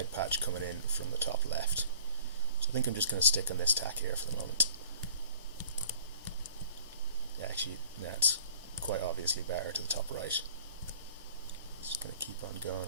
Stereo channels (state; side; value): inverted; both; correlation -0.51